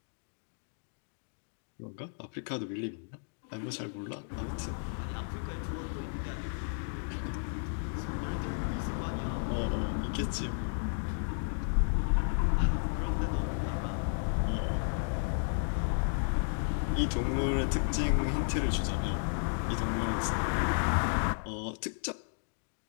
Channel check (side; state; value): right; silent; digital silence